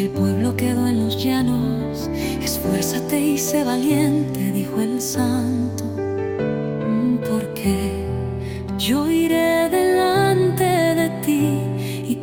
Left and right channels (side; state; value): both; identical; correlation 1.00